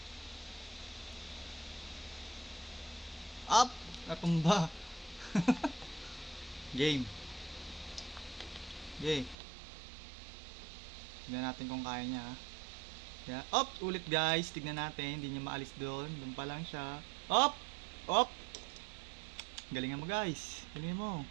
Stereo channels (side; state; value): left; drops out; at 9.3 s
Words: Up, natumba. Game. Okay. Tignan natin kung kaya niya. Yeah. Up, ulit guys. Tignan natin, hindi niya maalis doon. Doon pa lang siya. Up, up. Galingan mo guys. Galingan mo.